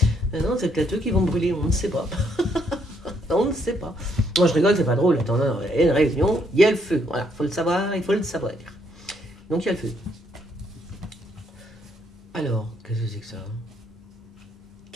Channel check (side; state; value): both; normal; correlation 0.72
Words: Non, c'est peut-être eux qui vont brûler, on ne sait pas. On ne sait pas. Moi, je rigole, c'est pas drôle. Attends, non, il y a une réunion, il y a le feu. Voilà, faut le savoir, il faut le savoir. Donc, il y a le feu. Alors, qu'est-ce que c'est que ça?